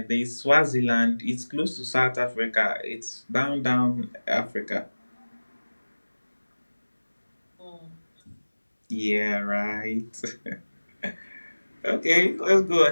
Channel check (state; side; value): inverted; both; correlation -1.00